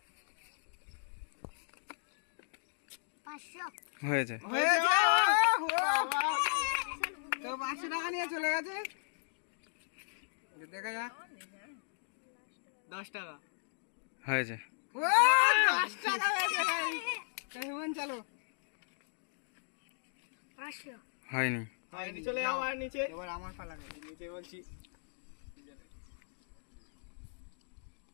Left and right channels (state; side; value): silent; right; digital silence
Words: 500 হয়েছে। তো 500 টাকা নিয়ে চলে গেছে। দেখা যাক 10 টাকা হয়েছে। ও 10 টাকা হয়েছে। হেমন চলো 500 হয়নি। হয়নি চলে যাও আর নিচে। এবার আমার পালা। নিচে বলছি